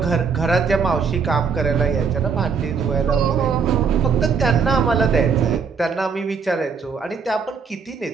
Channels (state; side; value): quieter; left; 5.7 dB